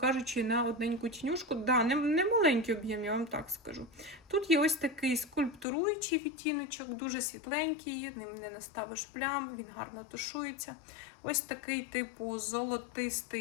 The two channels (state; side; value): drops out; right; at 5.7 s